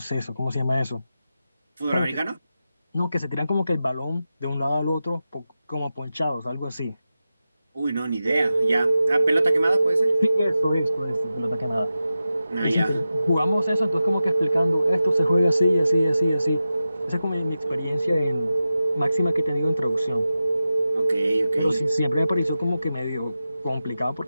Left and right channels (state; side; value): inverted; both; correlation -0.93